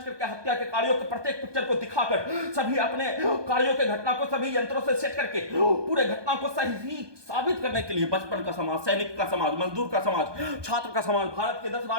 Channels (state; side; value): late; left; 1.2 ms